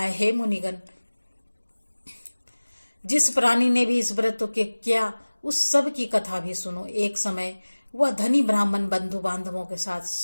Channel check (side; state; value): both; inverted; correlation -1.00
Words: हे मुनिगण, जिस प्राणी ने भी इस व्रत को किया उस सब की कथा भी सुनो। एक समय वह धनी ब्राह्मण बंधु बांधवों के साथ